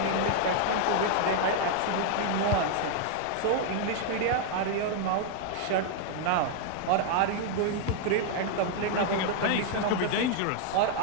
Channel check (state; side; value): different; both; correlation 0.00